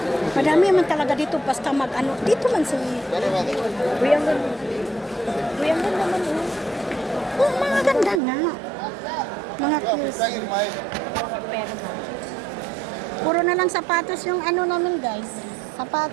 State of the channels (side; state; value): left; drops out; at 8.2 s